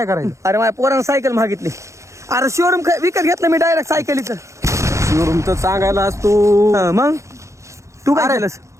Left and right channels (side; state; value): left; late; 0.14 ms